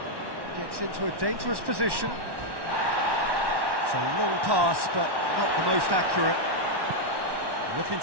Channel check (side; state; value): left; late; 1.1 ms